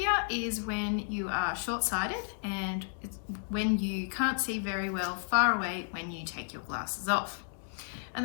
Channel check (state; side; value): silent; right; digital silence